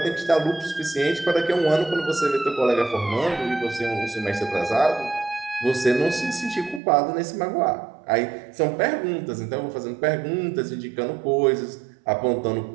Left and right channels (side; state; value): left; drops out; at 6.8 s